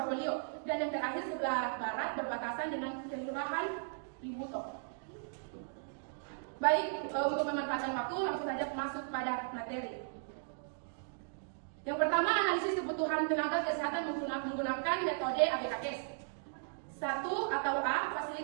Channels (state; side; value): silent; left; digital silence